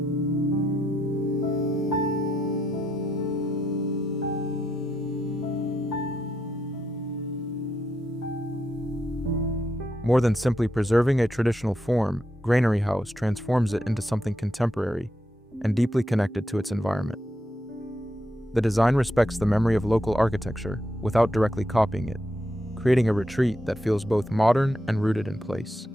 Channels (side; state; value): both; normal; correlation 0.81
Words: More than simply preserving a traditional form, Granary House transforms it into something contemporary and deeply connected to its environment. The design respects the memory of local architecture without directly copying it, creating a retreat that feels both modern and rooted in place.